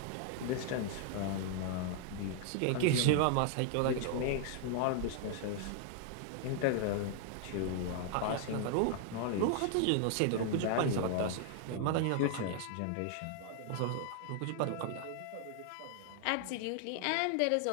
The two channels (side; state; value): both; different; correlation 0.00